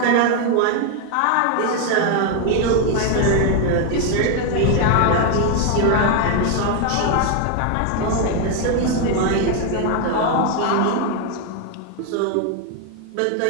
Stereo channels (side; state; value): both; different; correlation 0.01